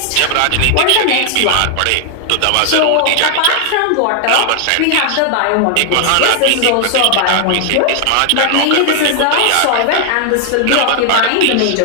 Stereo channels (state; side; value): different; both; correlation 0.00